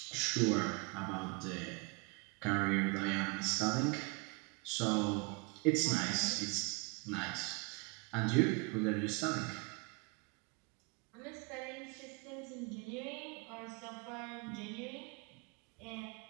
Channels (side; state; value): left; quieter; 30.3 dB